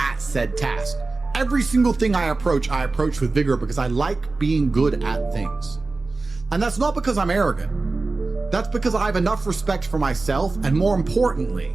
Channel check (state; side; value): quieter; left; 3.5 dB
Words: said task. Every single thing I approach with vigor because I like being good at things. And that's not because I'm arrogant. That's because I have enough respect for myself, and more importantly,